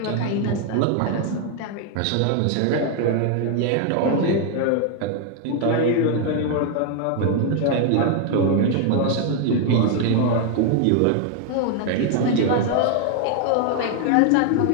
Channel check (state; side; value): different; both; correlation 0.00